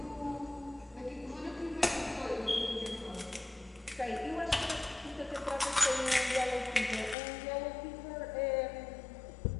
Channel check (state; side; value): drops out; right; at 7.2 s